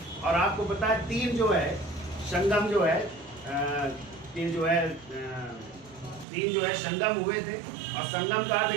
और आपको पता है 3 जो है संगम जो है 3 जो है 3 जो है संगम हुए थे। और संगम का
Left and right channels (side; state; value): left; drops out; at 6.2 s